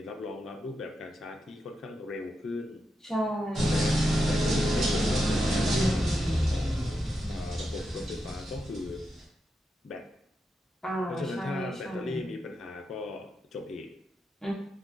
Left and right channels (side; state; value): both; normal; correlation 0.86